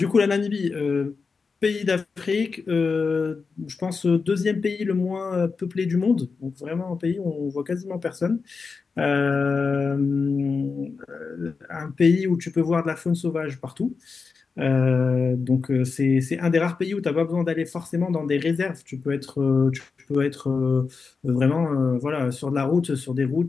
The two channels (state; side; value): quieter; right; 4.8 dB